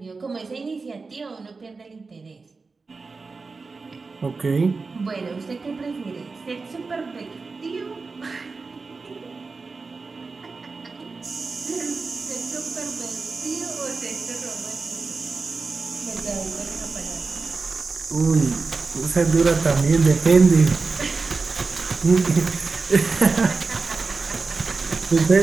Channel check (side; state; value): left; quieter; 4.2 dB